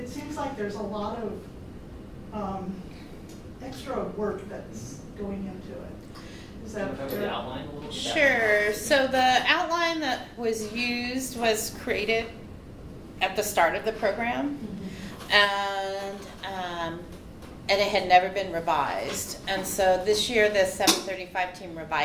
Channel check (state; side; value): identical; both; correlation 1.00